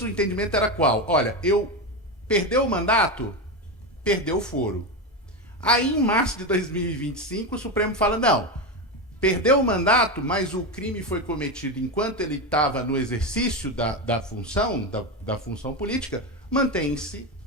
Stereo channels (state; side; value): normal; both; correlation 0.15